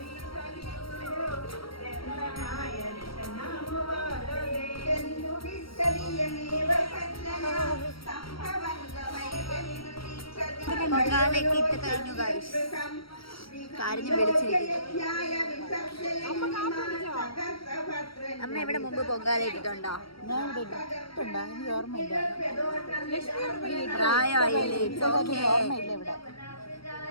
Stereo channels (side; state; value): right; late; 0.75 ms